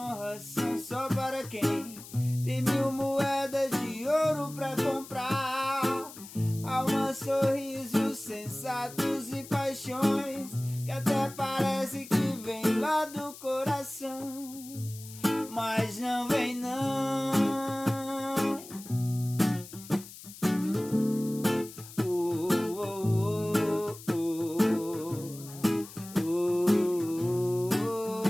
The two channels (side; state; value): left; noise; hiss, 16 dB below the sound